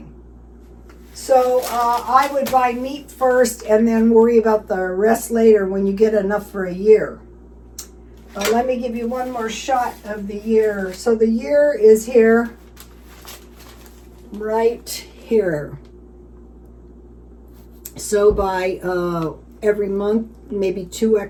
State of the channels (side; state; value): both; identical; correlation 1.00